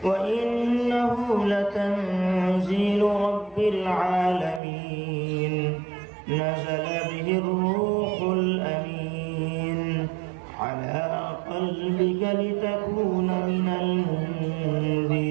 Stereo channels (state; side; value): drops out; left; at 4.6 s